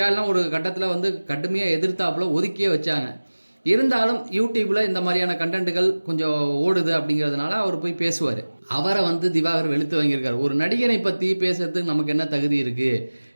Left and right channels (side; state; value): both; inverted; correlation -1.00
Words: ஒரு கட்டத்தில் வந்து கடுமையாக எதிர்த்தாப்புல ஒதுக்கியே வச்சாங்க. இருந்தாலும் யூடியூப்ல இந்த மாதிரியான கண்டென்ட்டுகள் கொஞ்சம் ஓடுது அப்படிங்கிறதுனால அவர் போய் பேசுவார். அவரை வந்து திவாகர் வெளுத்து வாங்கியிருக்காரு. ஒரு நடிகனை பற்றி பேசுறதுக்கு நமக்கு என்ன தகுதி இருக்குது?